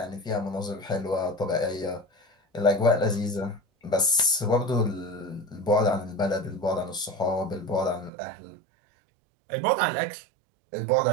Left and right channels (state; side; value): drops out; left; at 8.1 s